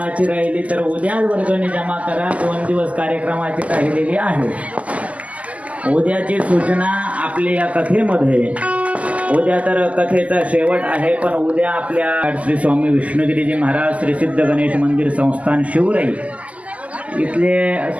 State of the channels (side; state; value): left; late; 0.070 ms